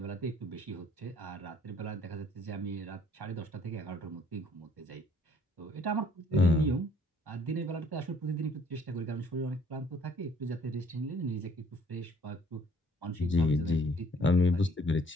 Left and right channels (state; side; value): normal; both; correlation 0.60